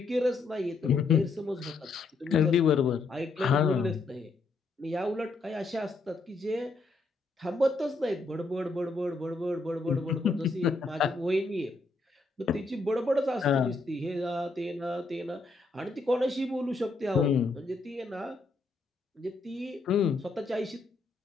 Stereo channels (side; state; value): right; quieter; 3.6 dB